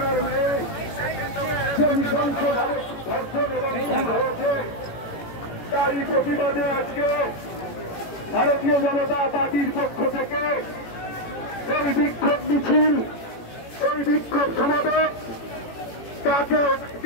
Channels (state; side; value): late; right; 18 ms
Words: মেয়ে যে নৃশংসভাবে ধর্ষণ এবং খুন হয়েছে, তারই প্রতিবাদে আজকে ভারতীয় জনতা পার্টির পক্ষ থেকে এই বিক্ষোভ মিছিল, এই বিক্ষোভ সমাবেশ তাকে